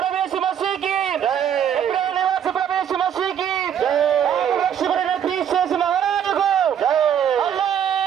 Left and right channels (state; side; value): quieter; left; 9.1 dB